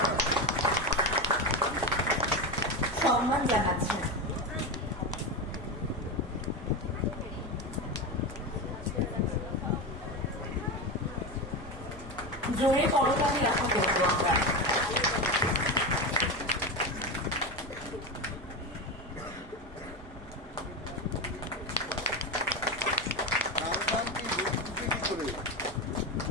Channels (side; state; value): both; normal; correlation 0.18